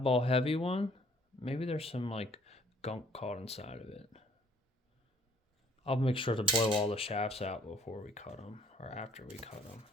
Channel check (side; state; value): both; normal; correlation 0.60